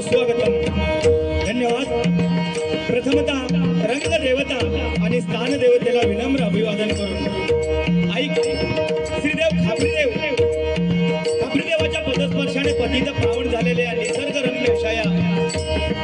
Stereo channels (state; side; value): identical; both; correlation 1.00